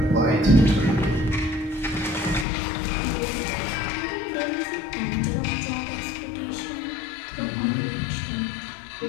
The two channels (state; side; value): drops out; right; at 2.5 s